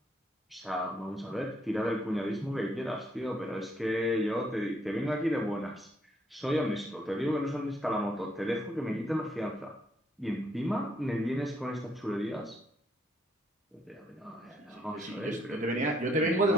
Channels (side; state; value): both; normal; correlation 0.71